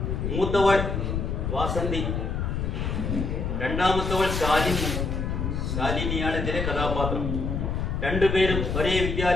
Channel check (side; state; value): left; noise; rumble, 1 dB below the sound